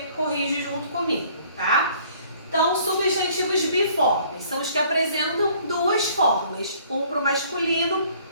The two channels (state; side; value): inverted; both; correlation -0.57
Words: corrige junto comigo, tá? Então, substantivos biformes são os que apresentam duas formas, um para o masculino,